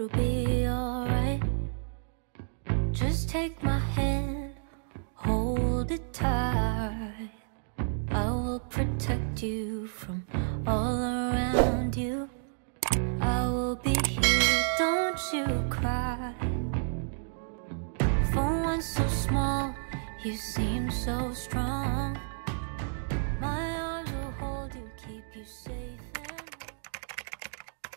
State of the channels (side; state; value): left; silent; digital silence